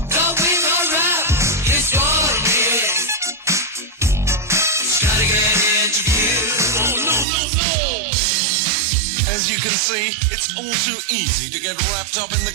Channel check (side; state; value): left; drops out; at 7.2 s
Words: As you can see, it's all too easy to get wrapped up in the